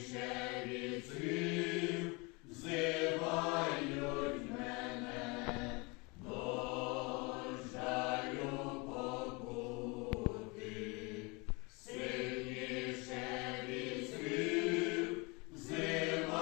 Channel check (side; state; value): right; quieter; 28.2 dB